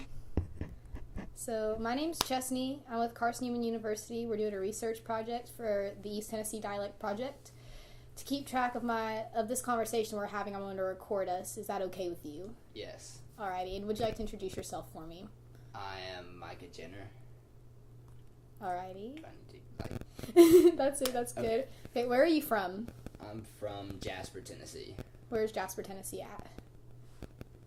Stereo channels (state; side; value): identical; both; correlation 1.00